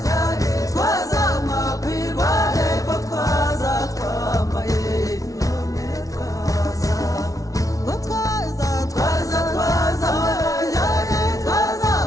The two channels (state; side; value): late; right; 0.17 ms